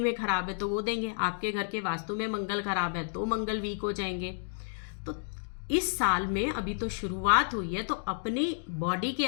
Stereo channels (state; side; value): silent; right; digital silence